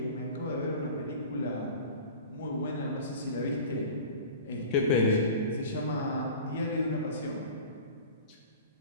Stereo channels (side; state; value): both; inverted; correlation -0.39